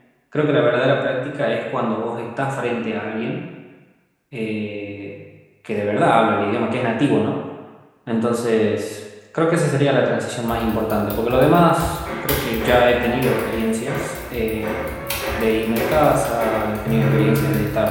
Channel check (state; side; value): identical; both; correlation 1.00